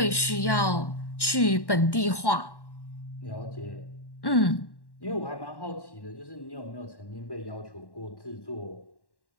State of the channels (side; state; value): right; late; 1.1 ms